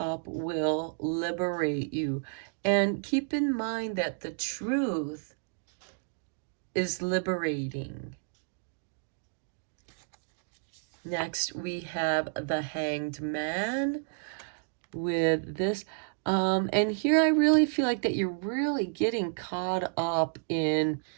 will liberate you. And keep in mind that the truth is liberating. Next, we have the Hanged Man with this. And here I really feel like that you're really getting caught up in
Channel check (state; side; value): silent; left; digital silence